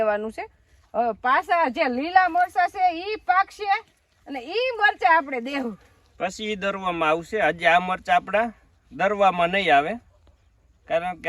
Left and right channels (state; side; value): identical; both; correlation 1.00